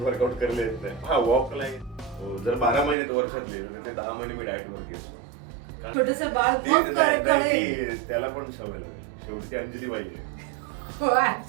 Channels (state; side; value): drops out; left; at 3.0 s